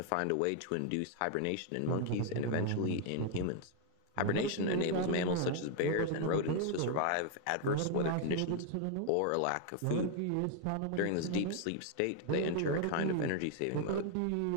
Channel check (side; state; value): both; different; correlation 0.00